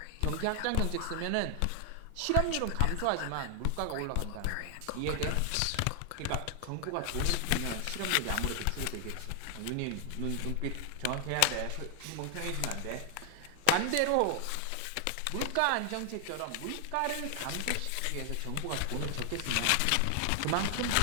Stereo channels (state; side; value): different; both; correlation 0.00